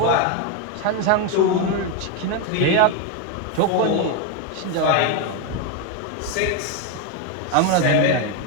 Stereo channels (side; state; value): both; different; correlation 0.02